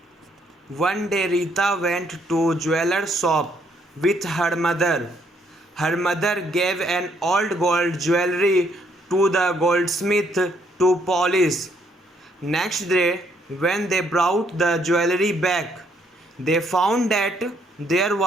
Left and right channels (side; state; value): both; normal; correlation 0.70